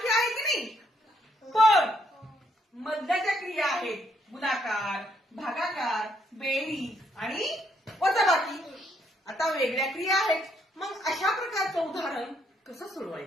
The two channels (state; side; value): normal; both; correlation 0.72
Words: आहेत की नाही? पण मधल्याच्या क्रिया आहेत गुणाकार, भागाकार, बेरीज आणि वजाबाकी. आता वेगळ्या क्रिया आहेत. मग अशा प्रकारचं उदाहरण कसं